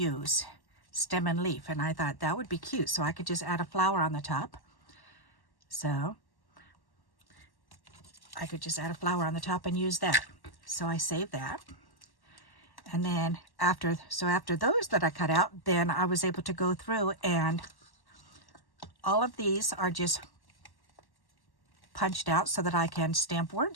stem and leaf, and I thought that would be cute, so I could just add a flower on the top. So I could just add a flower on the top and use that. So I saved that. And then after those that I cut out, then I was able to go through, and all of these are just punched out so that I can stamp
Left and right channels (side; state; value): right; late; 1.1 ms